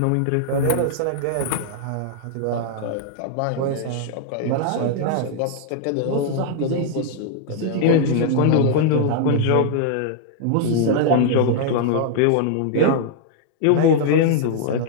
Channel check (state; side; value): different; both; correlation -0.01